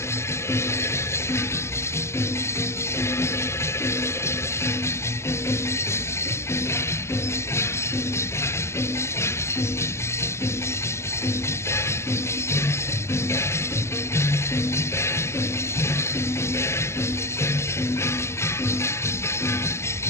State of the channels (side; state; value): right; late; 0.13 ms